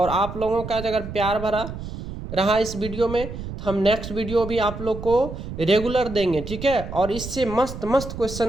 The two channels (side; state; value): right; noise; rumble, 9 dB below the sound